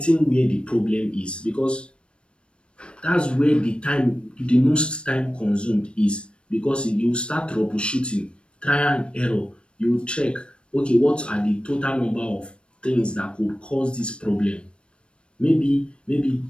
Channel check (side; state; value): right; late; 0.057 ms